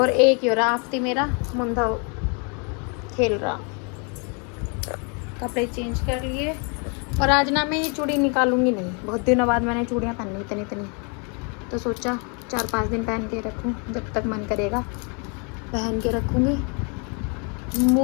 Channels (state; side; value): quieter; right; 35.9 dB